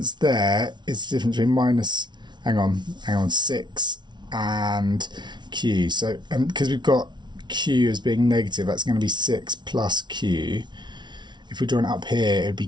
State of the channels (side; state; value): left; late; 0.21 ms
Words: there is the difference between minus, hang on, 6 and q. So, and because we've got q as being negative, that's going to be 6 plus q. If we draw it up here, it would be